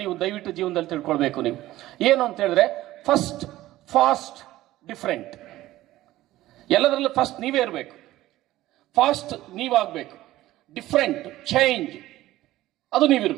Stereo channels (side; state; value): left; quieter; 15.8 dB